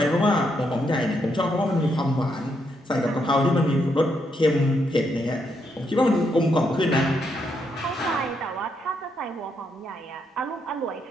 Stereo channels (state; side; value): normal; both; correlation 0.78